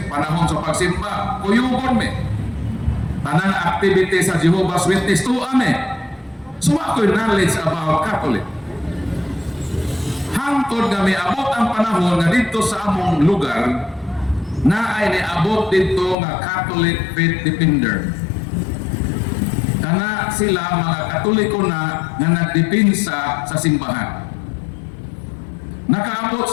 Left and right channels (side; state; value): right; drops out; at 16.2 s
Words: panahon sa pagsimba, kuyugon mi. Tanang activity sa Jehovah's Witness to ame. So ako'y knowledge about Catholic. Hangtod nga may abot ang panahon nga dito sa among lugar na ay niabot dito nga Catholic Faith Defender. Kana sila mga Katoliko na nga nagdipinsa sa simbahan. Nakaabot